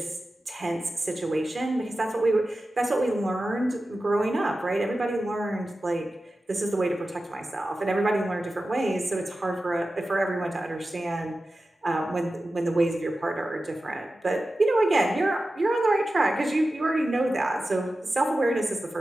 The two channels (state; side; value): normal; both; correlation 0.94